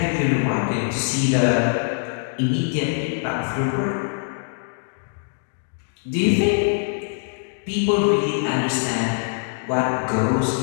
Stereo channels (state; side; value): silent; right; digital silence